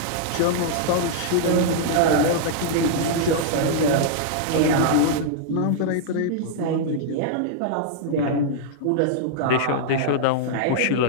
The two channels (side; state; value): both; different; correlation -0.01